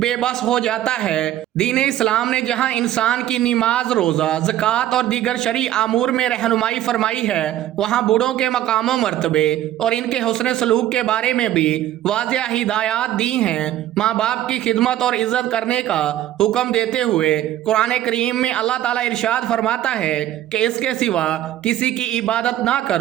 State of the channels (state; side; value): quieter; left; 12.9 dB